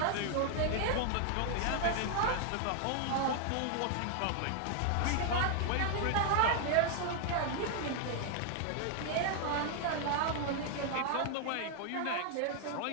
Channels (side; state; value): both; different; correlation 0.00